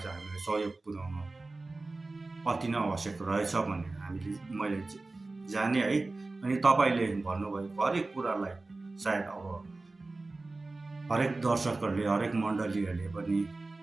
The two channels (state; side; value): quieter; left; 3.3 dB